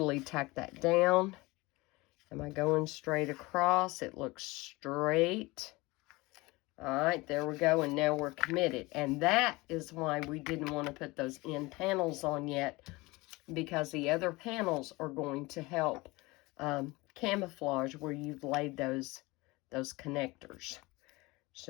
tack that down. Am I going straight across? It looks straight. All right, there we go, and now we're committed. And that is why we didn't want to put those end panels on yet, because the other panels are going to help camouflage where you've laid those connectors.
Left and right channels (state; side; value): quieter; right; 22.5 dB